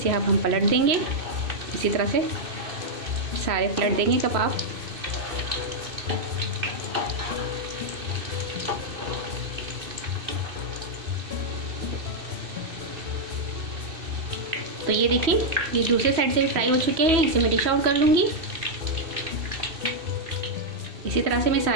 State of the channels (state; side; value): late; left; 2.7 ms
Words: अब हम पलट देंगे। इसी तरह से सारे पलट देंगे कबाब। तो ये देखिए ये दूसरे साइड से भी फ्राई हो चुके हैं, इसे मैं डिश आउट कर लूँगी। इसी तरह से मैं